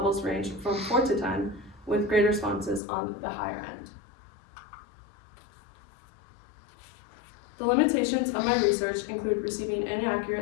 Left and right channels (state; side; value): drops out; right; at 2.8 s